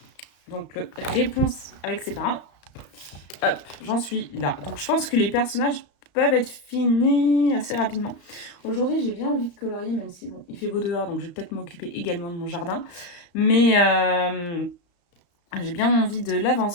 Donc, le réponse avec ses parents. Hop, j'en suis là. Donc je pense que les personnages peuvent être finis assez rapidement. Aujourd'hui, j'ai bien envie de colorier, même si bon, il fait beau dehors, donc je vais peut-être m'occuper également de mon jardin. Mais j'ai bien envie de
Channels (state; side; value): late; right; 34 ms